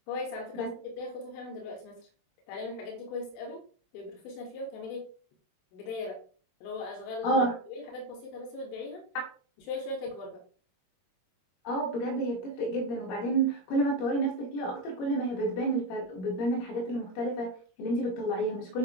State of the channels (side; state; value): right; late; 22 ms